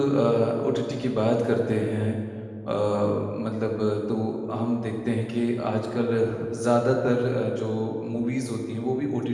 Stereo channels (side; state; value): both; identical; correlation 1.00